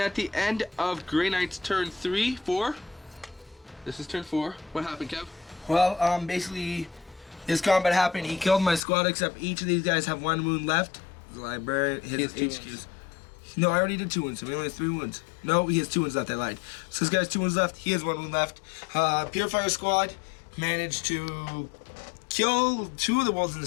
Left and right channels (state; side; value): drops out; right; at 8.8 s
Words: the end of Grey Knight's turn 4. This is turn 4. What happened, Kev? Well, basically, this combat happened. He killed my squad, except each of these guys have 1 wound left. The librarian, his has 2 HQs. wounds. No, I already did 2 wounds, so he only has 3 wounds. No, he has 2 wounds left, I lied. So this guy has 2 wounds left, he has 1 wound left. Purifier squad managed to kill 2 of the wolves in the